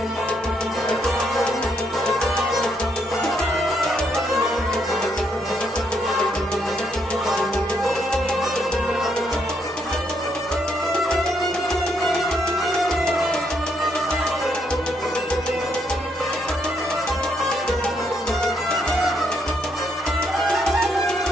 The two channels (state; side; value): normal; both; correlation 0.75